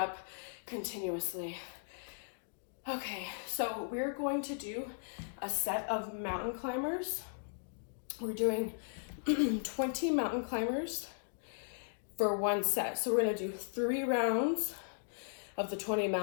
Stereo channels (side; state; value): right; silent; digital silence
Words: continuously. Okay, so we're going to do a set of mountain climbers. We're doing 20 mountain climbers for one set. So we're gonna do 3 rounds of the 20